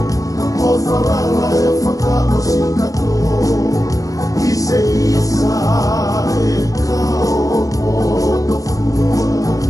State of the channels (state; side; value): late; right; 0.17 ms